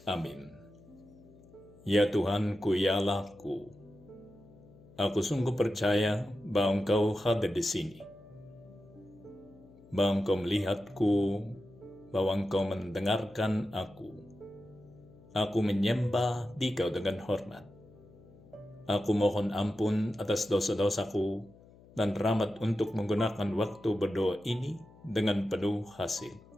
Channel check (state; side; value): noise; left; hum, 24 dB below the sound